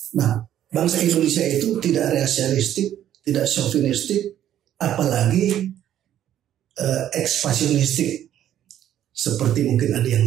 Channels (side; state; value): left; quieter; 11.3 dB